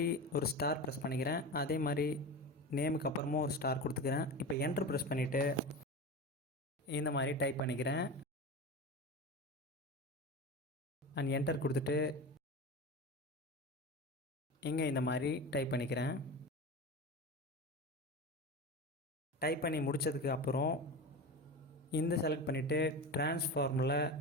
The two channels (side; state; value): both; normal; correlation 0.26